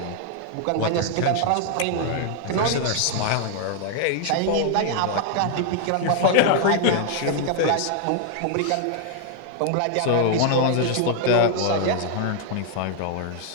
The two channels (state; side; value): different; both; correlation 0.00